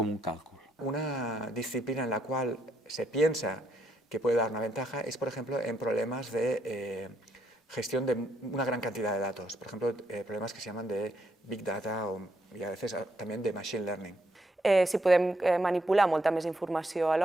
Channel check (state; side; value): normal; both; correlation 0.75